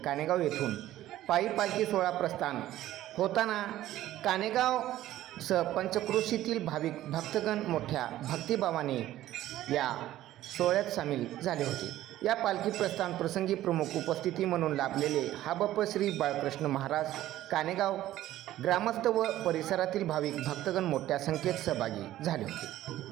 कानेगाव येथून पायी पालखी सोहळा प्रस्थान होताना कानेगाव सह पंचक्रोशीतील भाविक भक्तगण मोठ्या भक्तिभावाने या सोहळ्यात सामील झाले होते. या पालखी प्रस्थान प्रसंगी प्रमुख उपस्थिती म्हणून लाभलेले ह.ब.प. श्री बाळकृष्ण महाराज कानेगाव ग्रामस्थ व परिसरातील भाविक भक्तगण मोठ्या संख्येत सहभागी झाले होते.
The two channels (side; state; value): left; quieter; 14.1 dB